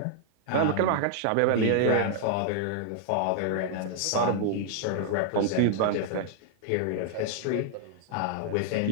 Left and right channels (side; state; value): both; different; correlation -0.01